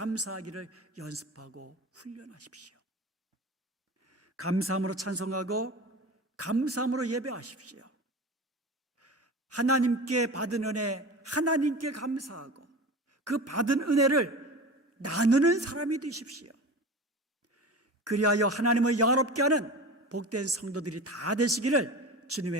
연습하고 훈련하십시오. 감사함으로 찬송하고 감사함으로 예배하십시오. 하나님께 받은 은혜, 하나님께 감사하고 그 받은 은혜를 나누는 사람이 되십시오. 그리하여 하나님을 영화롭게 하는 복된 성도들이 다 되시기를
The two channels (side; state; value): both; normal; correlation 0.32